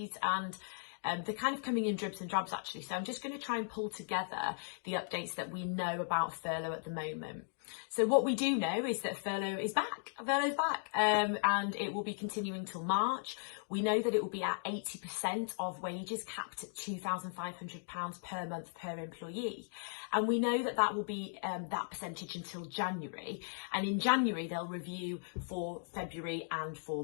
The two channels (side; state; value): right; silent; digital silence